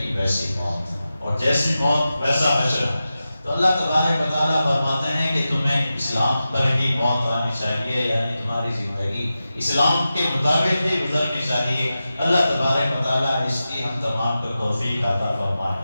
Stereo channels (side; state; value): both; inverted; correlation -0.93